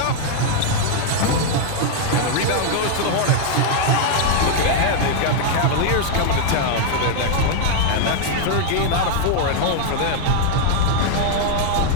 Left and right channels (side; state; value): both; different; correlation 0.00